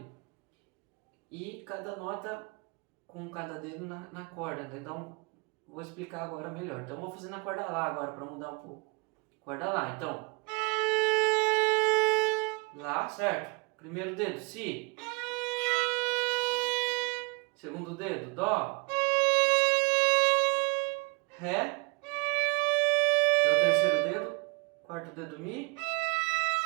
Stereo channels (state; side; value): quieter; left; 29.0 dB